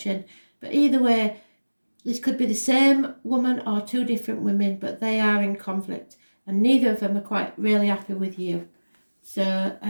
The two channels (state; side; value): inverted; both; correlation -1.00